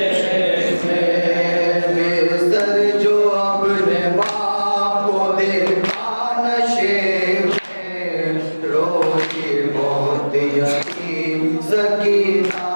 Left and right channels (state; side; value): inverted; both; correlation -1.00